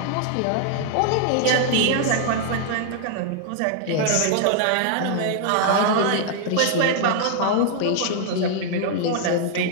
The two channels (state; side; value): different; both; correlation -0.01